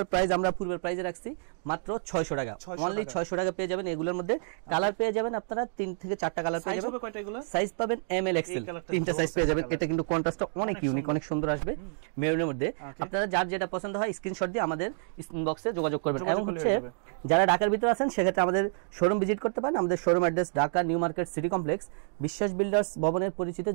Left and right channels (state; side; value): silent; left; digital silence